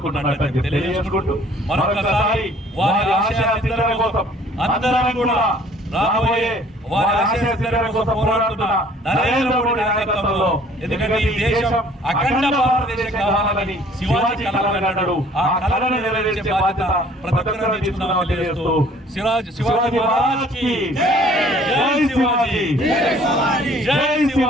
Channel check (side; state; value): both; normal; correlation 0.56